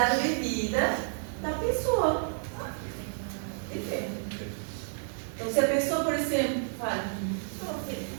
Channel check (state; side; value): silent; left; digital silence